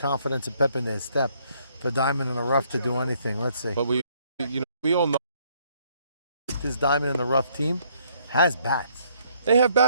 and pep in their step for Diamond in the Rough to do anything. Let's see. But we all know this Diamond in the Rough team has bats. they have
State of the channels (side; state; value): both; inverted; correlation -0.67